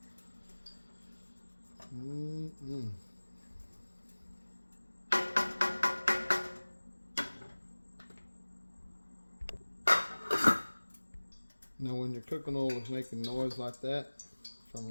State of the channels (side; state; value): both; inverted; correlation -1.00